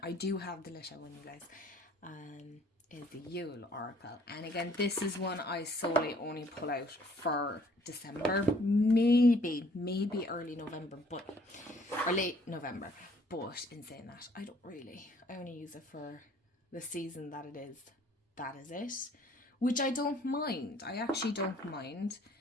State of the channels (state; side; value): normal; both; correlation 0.59